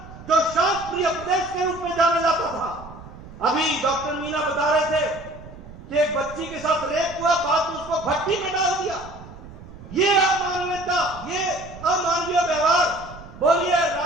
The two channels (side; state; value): right; noise; rumble, 17 dB below the sound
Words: जो शांत प्रिय प्रदेश के रूप में जाना जाता था, अभी डॉक्टर मीना बता रहे थे कि एक बच्ची के साथ रेप हुआ, बाद में उसको भट्टी में डाल दिया। ये अमानवीयता, ये अमानवीय व्यवहार। बोलिए,